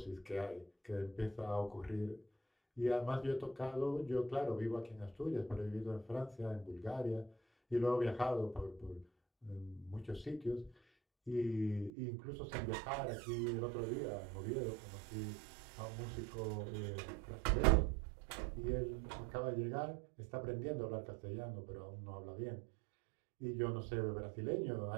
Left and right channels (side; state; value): left; drops out; at 11.9 s